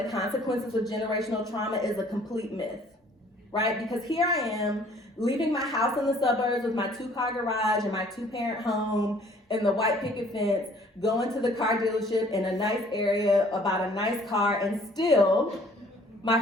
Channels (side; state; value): both; normal; correlation 0.56